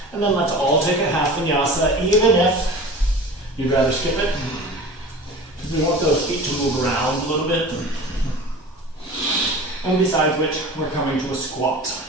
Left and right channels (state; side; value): normal; both; correlation 0.37